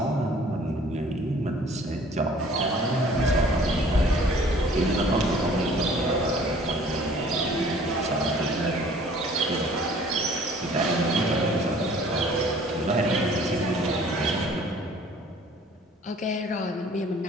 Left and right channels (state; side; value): normal; both; correlation 0.53